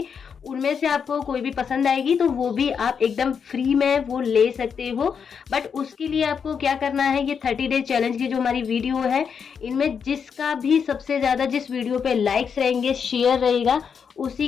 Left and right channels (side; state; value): right; quieter; 6.7 dB